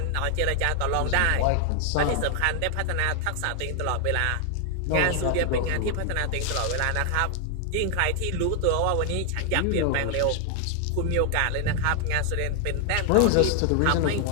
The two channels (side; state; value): both; different; correlation 0.00